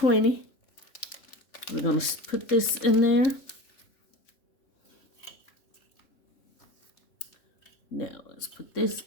We're going to put this in there. Now, let's put this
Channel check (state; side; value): late; right; 3.7 ms